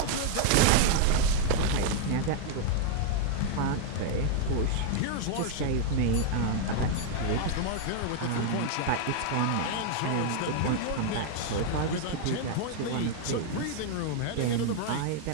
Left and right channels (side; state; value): both; different; correlation 0.00